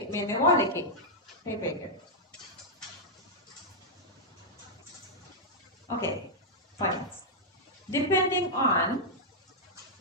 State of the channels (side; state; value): both; normal; correlation -0.06